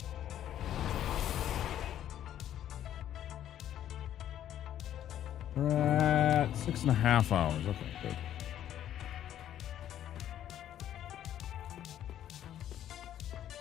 We're at 6.5 hours. Okay, good.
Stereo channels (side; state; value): right; quieter; 11.2 dB